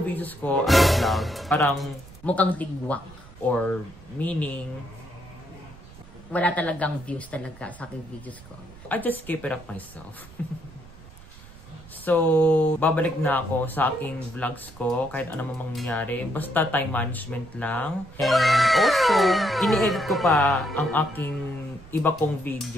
videos ko as a vlog, parang Mukhang tigwak. or meaning, Wala talagang views talaga sa aking videos ko. I just keep it up myself. So, babalik na ako sa aking vlogs ko kahit ano mang mangyari. Basta time management lang. And also, ini-edit ko pa ang aking iba kong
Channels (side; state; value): right; noise; rumble, 20 dB below the sound